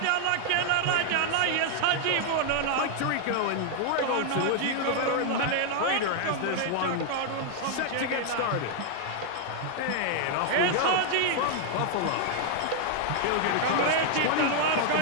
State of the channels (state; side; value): different; both; correlation 0.00